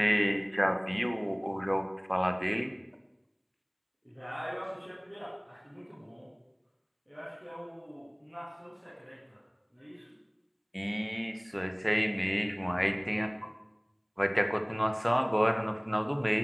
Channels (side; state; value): both; identical; correlation 1.00